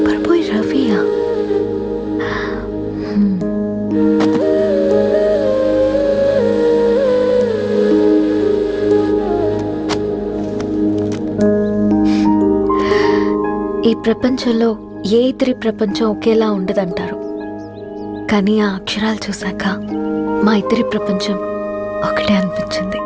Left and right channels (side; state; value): both; identical; correlation 1.00